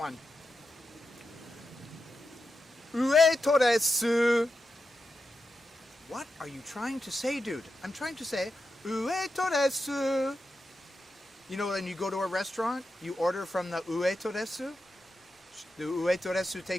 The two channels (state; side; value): normal; both; correlation 0.89